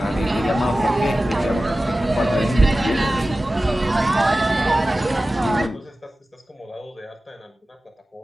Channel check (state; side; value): normal; both; correlation 0.96